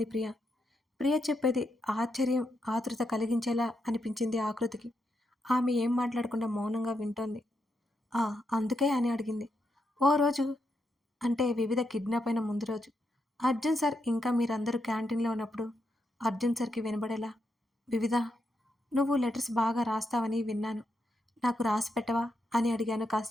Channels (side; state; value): both; normal; correlation 0.82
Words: ప్రియ. ప్రియ చెప్పేది ఆశ్చర్యం ఆతృత కలిగించేలా అనిపించింది ఆకృతికి. ఆమె ఏం మాట్లాడకుండా మౌనంగా వింటోంది. అందుకే అని అడిగింది. ఓ రోజు అంటే వివిధ కిడ్నాప్ అయిన ముందు రోజు అర్జున్ సార్ ఇంకా మీరందరూ క్యాంటీన్లో ఉన్నప్పుడు అర్జున్ సార్కి వినబడేలా, వివిధ నువ్వు లెటర్స్ బాగా రాస్తావని విన్నాను, నాకు రాసి పెట్టవా అని అడిగాను